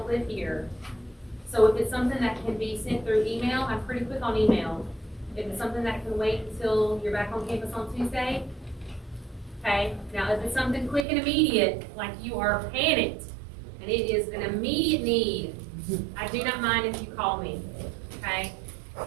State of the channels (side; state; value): left; drops out; at 11.1 s